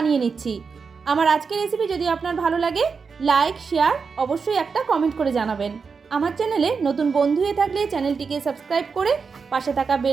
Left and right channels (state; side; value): quieter; left; 5.3 dB